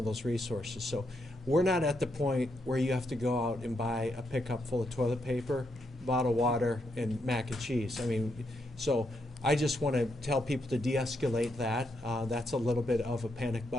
those resources. So we're not at the point where you have to go out and buy a pickup full of toilet paper, bottled water, and mac and cheese. I mean, so I just want to tell people to de-escalate that. That's a little bit of a panic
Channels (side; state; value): both; normal; correlation 0.80